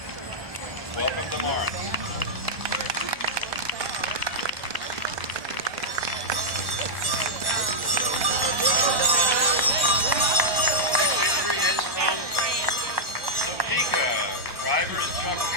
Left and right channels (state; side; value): late; left; 1.1 ms